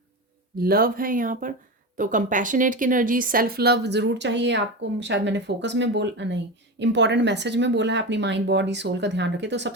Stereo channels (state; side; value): normal; both; correlation 0.22